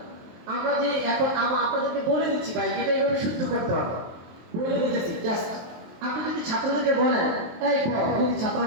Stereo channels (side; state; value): left; late; 23 ms